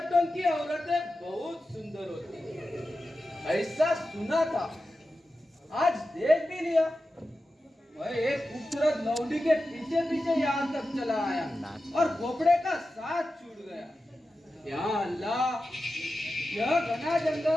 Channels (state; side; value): normal; both; correlation 0.92